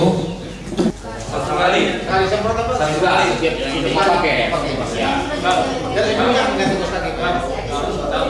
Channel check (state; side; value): identical; both; correlation 1.00